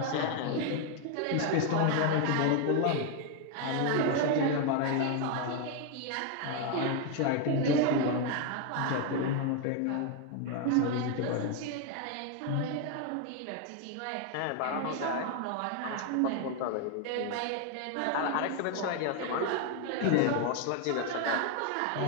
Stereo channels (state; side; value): different; both; correlation 0.01